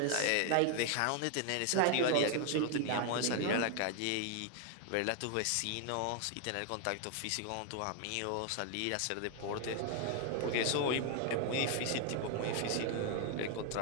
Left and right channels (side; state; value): both; different; correlation 0.00